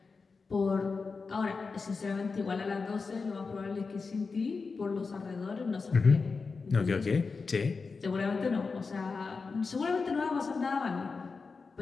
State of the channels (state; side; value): quieter; right; 4.6 dB